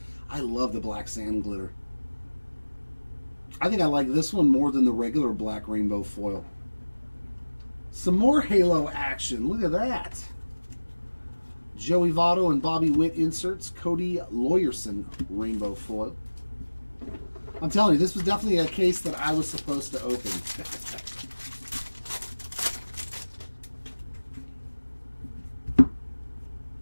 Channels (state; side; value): inverted; both; correlation -1.00